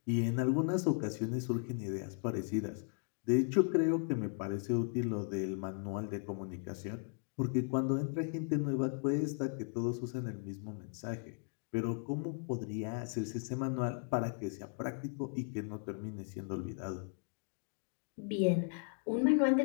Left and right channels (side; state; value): right; silent; 53 dB below the other